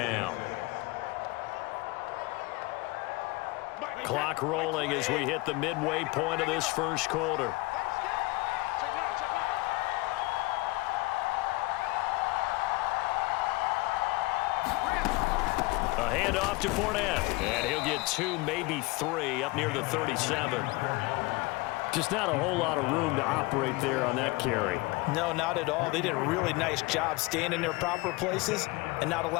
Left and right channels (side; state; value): right; quieter; 22.4 dB